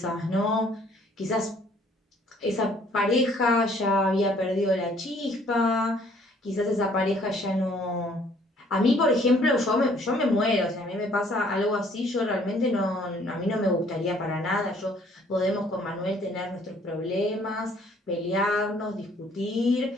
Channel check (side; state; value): both; normal; correlation 0.61